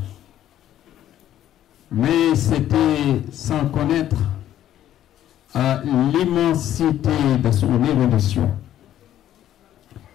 mais c'était sans connaître l'immensité de son érudition.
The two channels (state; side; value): quieter; right; 11.9 dB